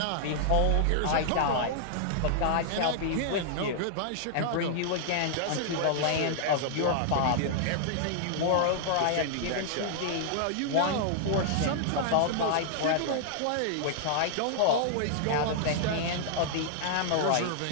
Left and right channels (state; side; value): different; both; correlation -0.01